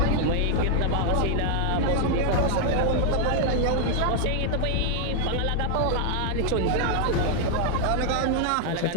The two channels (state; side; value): different; both; correlation 0.00